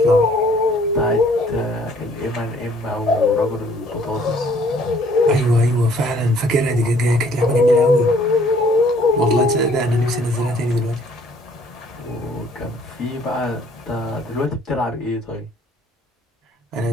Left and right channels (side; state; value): both; normal; correlation 0.60